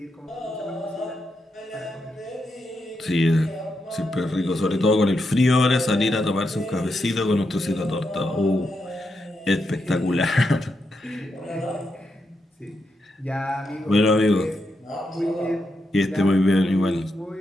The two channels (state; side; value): normal; both; correlation 0.84